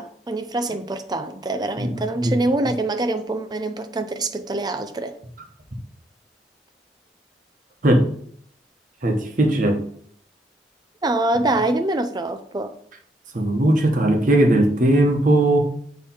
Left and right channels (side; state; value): both; normal; correlation 0.72